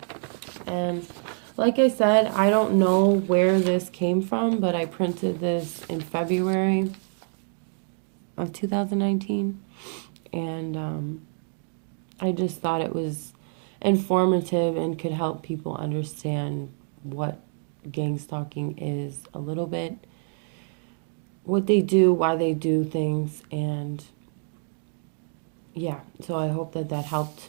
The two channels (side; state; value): left; silent; 60 dB below the other